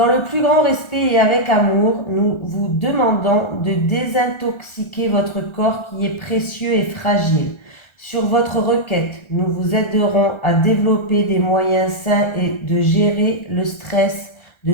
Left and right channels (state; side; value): late; right; 1.4 ms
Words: le plus grand respect et avec amour, nous vous demandons de désintoxiquer votre corps qui est précieux et fragile. Sur votre requête, nous vous aiderons à développer des moyens sains et de gérer le stress, de